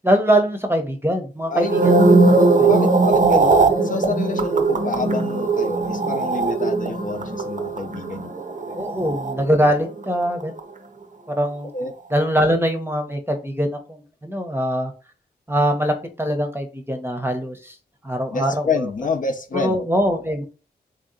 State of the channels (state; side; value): normal; both; correlation 0.60